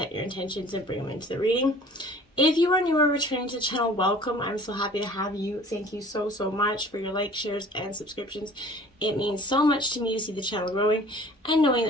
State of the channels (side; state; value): both; normal; correlation 0.49